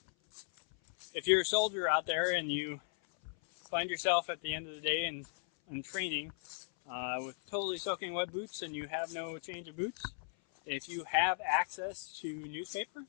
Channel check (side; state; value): right; silent; 53 dB below the other